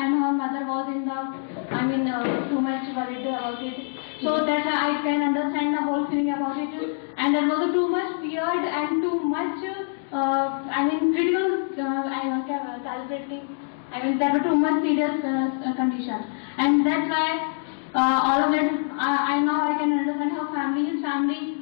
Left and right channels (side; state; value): right; silent; digital silence